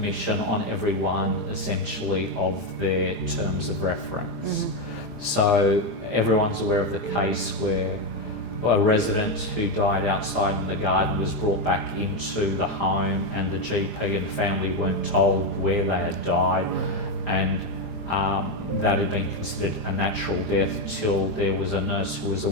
on every one, essentially, of their terms of reference. So everyone's aware of the case where a resident who died outside in the garden was brought back into the home, and the GP and family weren't told where they had died, and that had been considered a natural death till there was a nurse who was a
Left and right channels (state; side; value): late; right; 5.0 ms